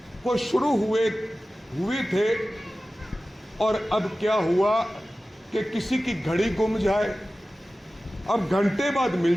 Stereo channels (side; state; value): both; normal; correlation 0.96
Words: को शुरू हुए थे, और अब क्या हुआ कि किसी की घड़ी गुम जाए, अब घंटे बाद